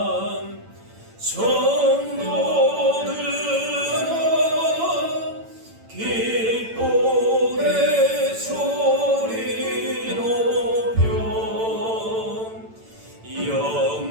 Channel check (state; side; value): late; left; 8.9 ms